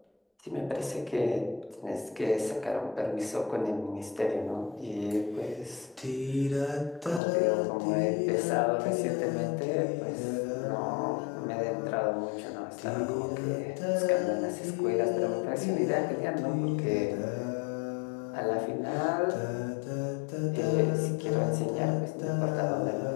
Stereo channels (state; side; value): drops out; right; at 7.2 s